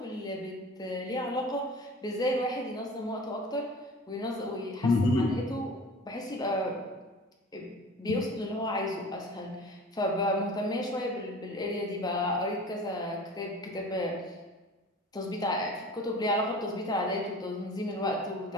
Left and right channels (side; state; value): both; normal; correlation 0.40